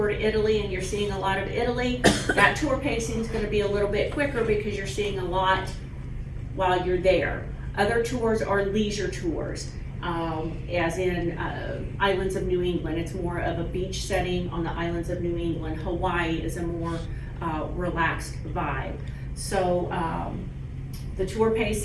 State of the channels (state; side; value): identical; both; correlation 1.00